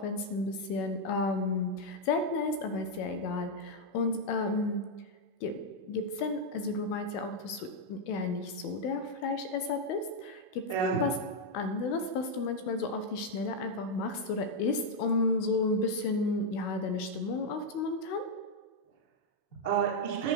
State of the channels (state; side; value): late; right; 16 ms